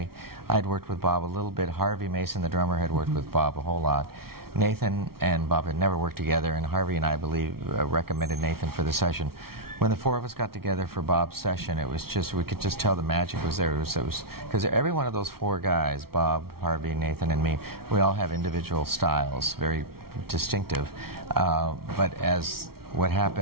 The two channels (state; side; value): late; left; 0.94 ms